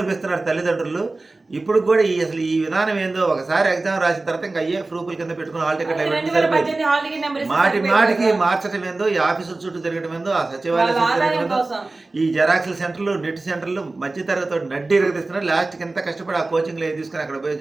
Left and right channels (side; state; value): left; quieter; 3.3 dB